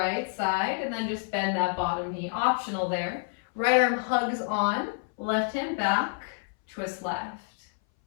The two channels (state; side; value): silent; right; 59 dB below the other